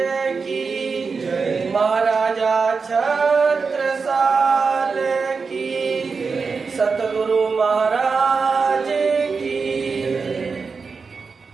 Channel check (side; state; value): left; quieter; 4.9 dB